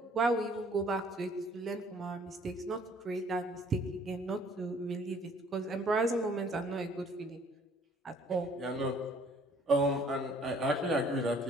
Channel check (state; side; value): normal; both; correlation 0.58